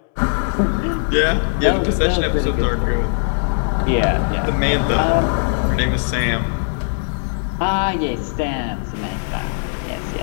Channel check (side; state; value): right; silent; digital silence